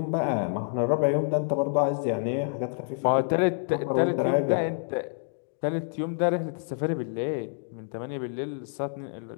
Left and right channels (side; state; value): right; silent; digital silence